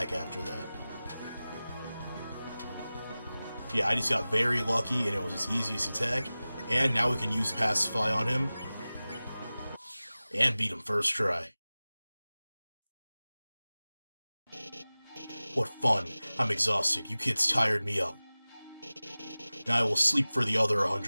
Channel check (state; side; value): inverted; both; correlation -0.98